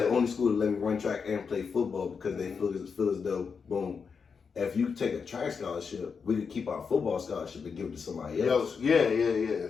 only school to let me run track and play football because they feel as though, boom, if you take a track scholarship, we could keep our football scholarship and give it to somebody else. Yeah.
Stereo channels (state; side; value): quieter; right; 5.8 dB